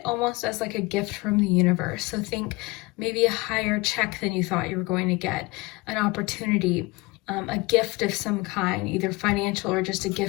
almost as like a gift from the universe. So think maybe a higher check than you thought you were going to get, an opportunity, a gift of some kind, either financial or just a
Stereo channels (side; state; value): right; quieter; 23.4 dB